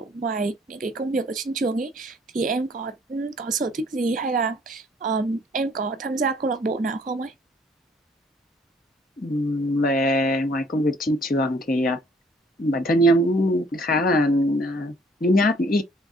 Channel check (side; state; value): both; normal; correlation 0.60